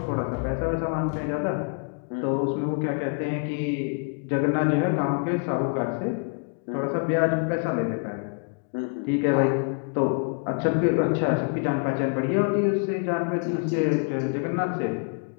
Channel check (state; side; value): quieter; right; 38.6 dB